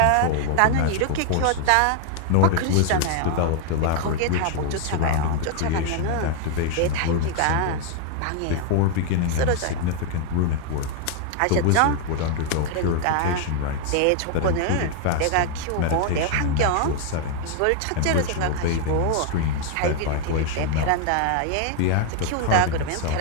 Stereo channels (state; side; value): different; both; correlation 0.00